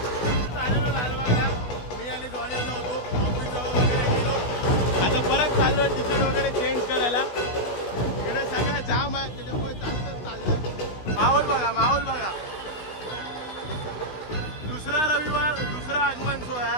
मी आणि जॉनी आलो होतो ऑफिस वगैरे गेलो. आता परत चाललोय तिकीट वगैरे चेंज करायला. इकडे सगळं जाम आहे त्याच्यामुळे चालतच चाललंय. माहोल बघा माहोल बघा. दुसरा रविवार दुसरा आगमन सोहळा.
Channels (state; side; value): late; right; 16 ms